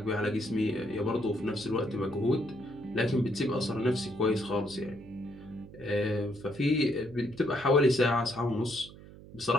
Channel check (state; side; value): noise; right; hum, 18 dB below the sound